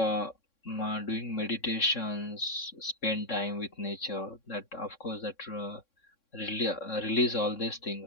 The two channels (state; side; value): late; right; 3.6 ms